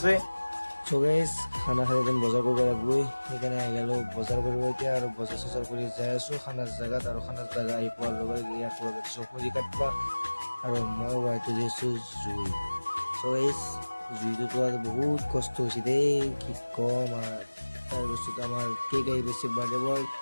চ' গাইজ খানা খালে যেন বজাৰ কৰিব লাগিবই সেইকাৰণে আহি গ'লোঁ বজাৰ কৰিব এতিয়া আৰু বজাৰ চজাৰ কৰি যাই আছোঁ খানাৰ জেগাত আৰু খানাৰ জেগা আহি পোৱাৰ লগে লগে ইয়াক লগত দিছোঁ খৰি কাটবা আৰু মই ৱাইটো দিছোঁ জুই। চ' গাইজ জুইটো তোলাত বহুত কষ্ট হৈছে দেই কি কম আৰু তাৰপিছত আমাৰ কেক আহি পাইছে বাৰ্থডে বয়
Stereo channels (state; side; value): inverted; both; correlation -1.00